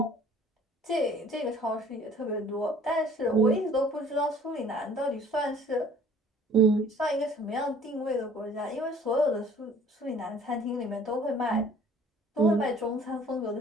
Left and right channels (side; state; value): both; normal; correlation 0.53